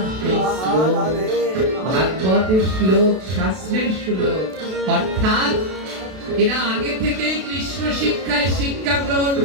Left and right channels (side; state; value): left; late; 32 ms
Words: সেই শ্লোক ভাগবতের শ্লোক শাস্ত্রের শ্লোক অর্থাৎ এরা আগে থেকেই কৃষ্ণ শিক্ষায় শিক্ষা গ্রহণ